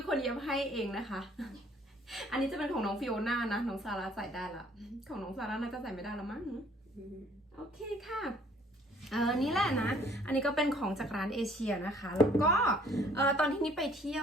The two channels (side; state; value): both; normal; correlation 0.59